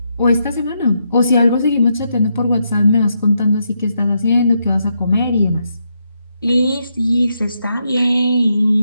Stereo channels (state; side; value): inverted; both; correlation -0.81